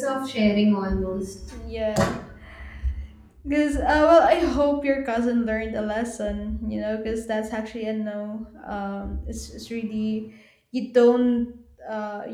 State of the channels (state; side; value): identical; both; correlation 1.00